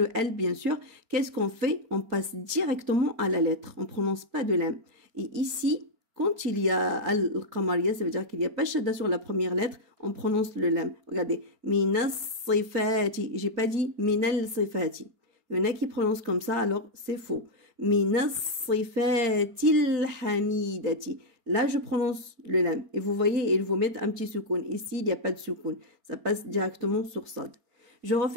L, bien sûr, qu'est-ce qu'on fait? On passe directement à la lettre. On ne prononce pas de l'am. Et ici, quand il y a al-qamariya, ça veut dire qu'il n'y a pas shadda sur la première lettre, on prononce le lam. Regardez. Minas sifati. J'ai pas dit minal sifati. Il y en a qui prononcent comme ça, alors c'est faux. Minas sifatil hamidati. Là, je prononce le lam. Et vous voyez, il faut mettre un petit soukoun. Ici, il n'y a pas de soukoun. Ça passe directement sur sad. Je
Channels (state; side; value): late; left; 4.3 ms